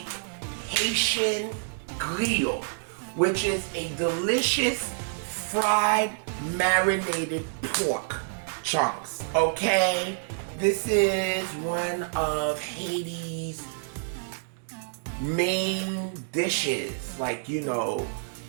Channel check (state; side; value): silent; left; digital silence